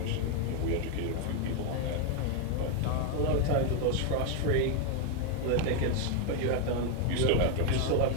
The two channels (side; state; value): both; different; correlation 0.01